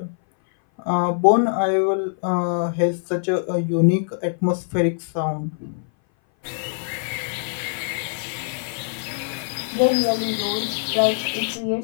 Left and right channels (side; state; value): right; silent; 58 dB below the other